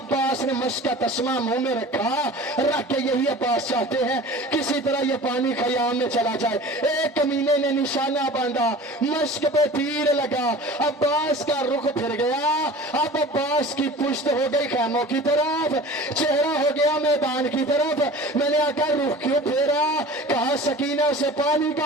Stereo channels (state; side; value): normal; both; correlation 0.40